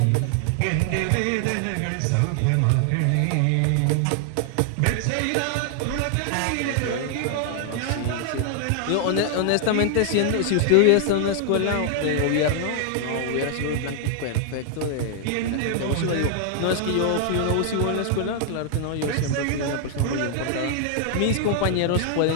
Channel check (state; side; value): different; both; correlation 0.00